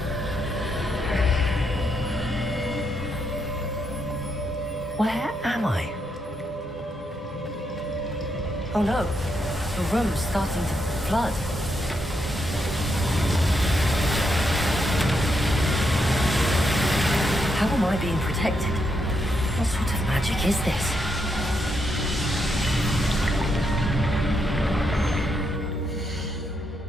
Where am I? Oh no, the room's starting to flood. How am I being protected? What sort of magic is this?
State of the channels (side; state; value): both; normal; correlation 0.80